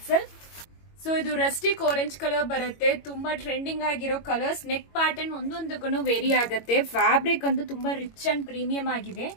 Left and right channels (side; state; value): right; late; 22 ms